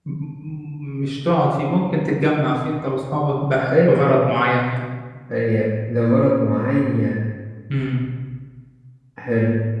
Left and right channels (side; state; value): both; identical; correlation 1.00